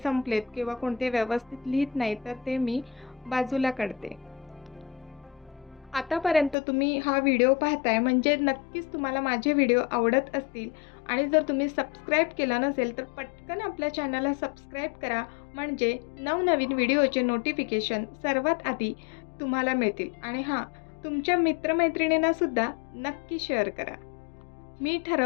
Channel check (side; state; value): right; drops out; at 6.6 s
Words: किंवा कोणते व्यवस्थित लिहित नाही, तर ते मी बाजूला काढते. आतापर्यंत तुम्ही हा व्हिडिओ पाहताय म्हणजे नक्कीच तुम्हाला माझे व्हिडिओ आवडत असतील आणि जर तुम्ही सबस्क्राईब केलं नसेल तर पटकन आपल्या चॅनलला सबस्क्राईब करा, म्हणजे नवनवीन व्हिडिओचे नोटिफिकेशन सर्वात आधी तुम्हाला मिळतील. आणि हां, तुमच्या मित्रमैत्रिणींनासुद्धा नक्की शेअर करा. मी